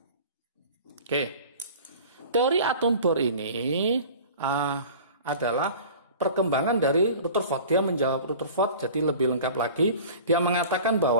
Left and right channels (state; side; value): inverted; both; correlation -0.41